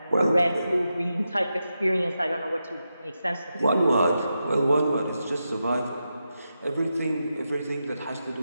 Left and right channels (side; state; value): both; inverted; correlation -0.88